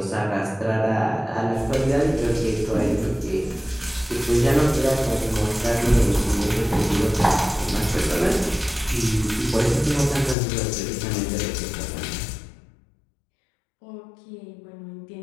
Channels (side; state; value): right; drops out; at 10.4 s